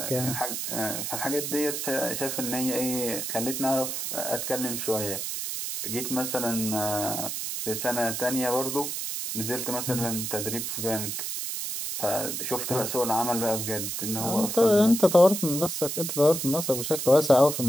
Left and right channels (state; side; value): noise; right; hiss, 3 dB below the sound